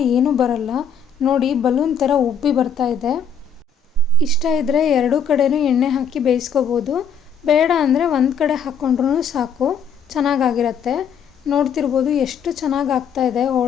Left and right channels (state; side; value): quieter; right; 6.0 dB